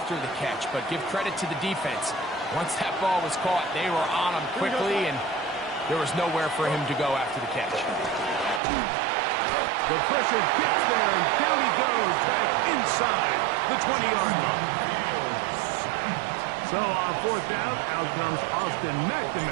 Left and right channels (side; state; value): left; drops out; at 8.6 s